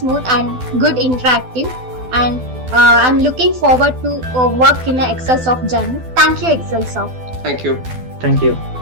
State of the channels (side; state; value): left; late; 12 ms